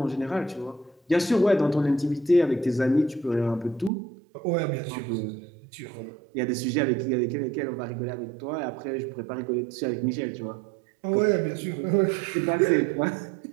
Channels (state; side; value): drops out; left; at 3.9 s